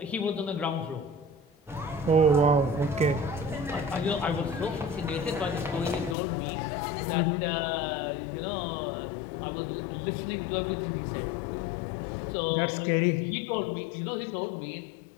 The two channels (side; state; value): right; drops out; at 6.2 s